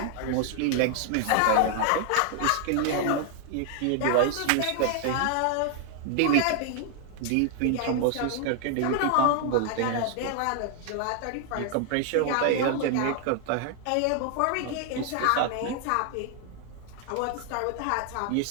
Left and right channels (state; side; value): different; both; correlation 0.00